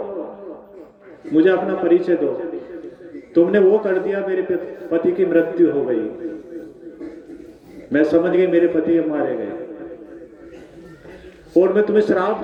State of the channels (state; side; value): identical; both; correlation 1.00